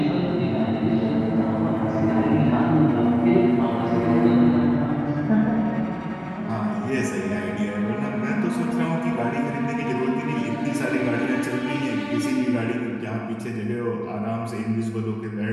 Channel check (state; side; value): identical; both; correlation 1.00